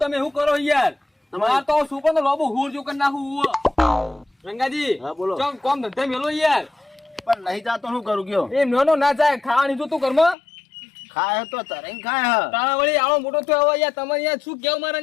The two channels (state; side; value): drops out; right; at 10.4 s